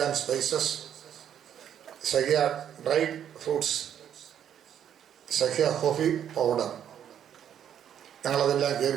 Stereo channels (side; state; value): left; quieter; 9.5 dB